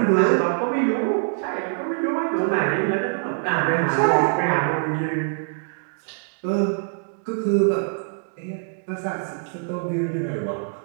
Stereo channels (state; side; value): silent; left; digital silence